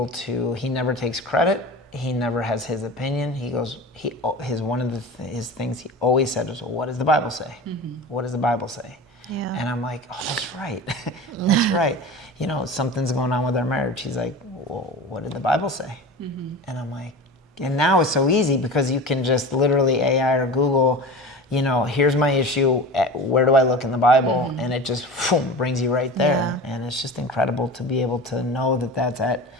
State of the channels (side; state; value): both; normal; correlation 0.33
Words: to, he never takes credit. He never has his opinion. One of his things he always said was, well, what does the Bible say? What does the Bible say? Yeah. And I'm like, oh, that's right. That's right. You know, something's going on with our marriage. He's like, well, what did the Bible say? And I'm like, and now it's so easy because you can just literally AI or Google, you know, here's my issue. Where do I look in the Bible? And it just boom, brings you right there. Yeah. And it's just incredible to be able to know that that's at.